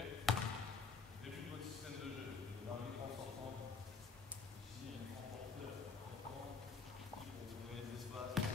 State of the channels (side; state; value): right; quieter; 4.9 dB